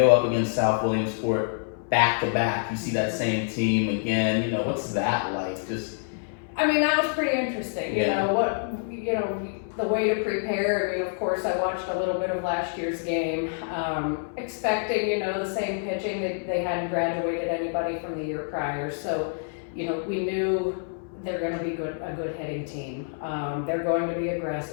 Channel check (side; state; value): right; silent; 60 dB below the other